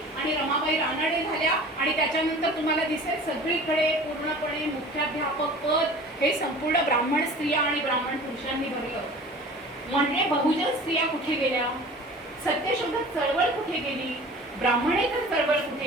आणि रमाबाई रानडे झाल्या आणि त्याच्यानंतर तुम्हाला दिसेल सगळीकडे पूर्णपणे मुख्याध्यापक पद हे संपूर्ण ब्राह्मण स्त्रिया आणि ब्राह्मण पुरुषांनी भरलं. म्हणजे बहुजन स्त्रिया कुठे गेल्या, सत्यशोधक चळवळ कुठे गेली, ब्राह्मणेतर चळवळ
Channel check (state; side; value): normal; both; correlation 0.42